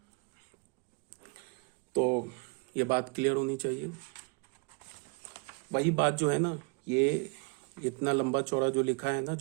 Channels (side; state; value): left; quieter; 30.6 dB